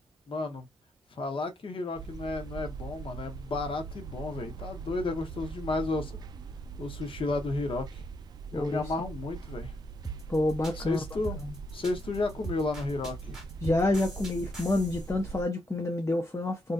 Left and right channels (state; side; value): normal; both; correlation 0.78